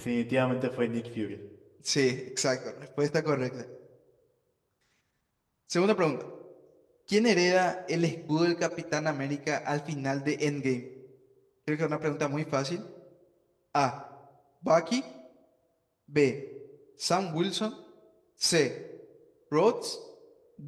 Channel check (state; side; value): identical; both; correlation 1.00